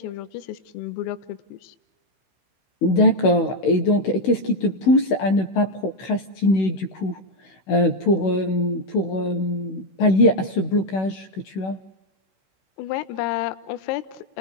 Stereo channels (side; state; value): right; late; 16 ms